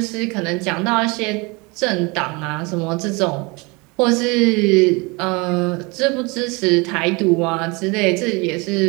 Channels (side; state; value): left; quieter; 27.3 dB